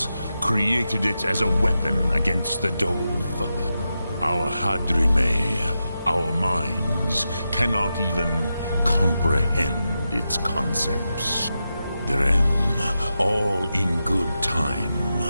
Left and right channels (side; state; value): both; inverted; correlation -0.89